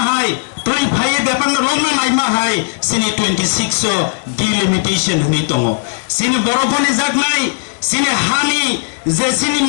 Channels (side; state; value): right; silent; digital silence